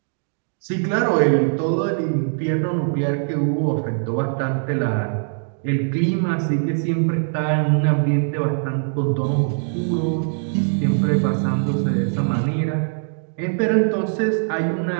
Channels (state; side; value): silent; left; digital silence